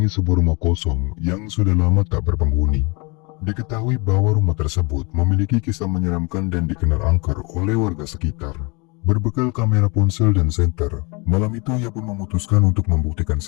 sebuah rumah kosong yang sudah lama tak berpenghuni. Diketahui bahwa rumah tersebut memiliki kisah menyeramkan dan dikenal angker oleh warga sekitar. Berbekal kamera ponsel dan senter, malam itu ia pun memutuskan untuk membuktikan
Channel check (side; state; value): right; quieter; 29.0 dB